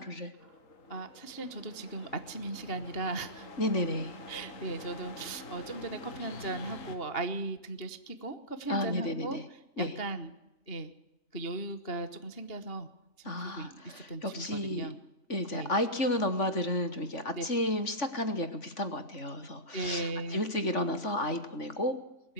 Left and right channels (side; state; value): right; late; 3.5 ms